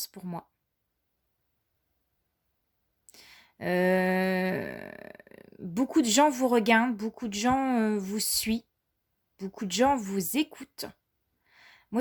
pour moi. Beaucoup de gens vous regardent, beaucoup de gens vous suivent, beaucoup de gens vous écoutent. Moi,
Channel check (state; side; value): identical; both; correlation 1.00